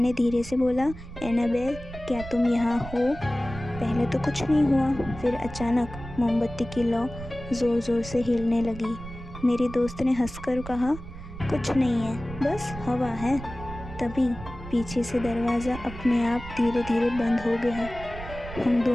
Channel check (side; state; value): right; noise; rumble, 13 dB below the sound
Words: धीरे से बोला, एनाबेल क्या तुम यहाँ हो? पहले तो कुछ नहीं हुआ, फिर अचानक मोमबत्ती की लौ ज़ोर ज़ोर से हिलने लगी। मेरी दोस्त ने हंसकर कहा, कुछ नहीं है, बस हवा है। तभी पीछे से दरवाज़ा अपने आप धीरे धीरे बंद हो गया। हम